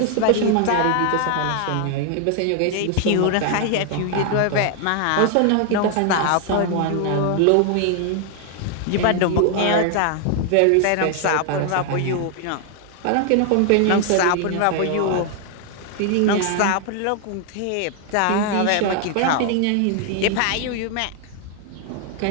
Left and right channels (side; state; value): both; different; correlation 0.00